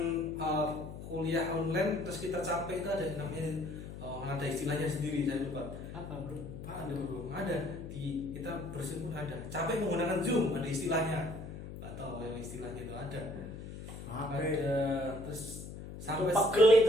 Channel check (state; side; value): noise; left; hum, 11 dB below the sound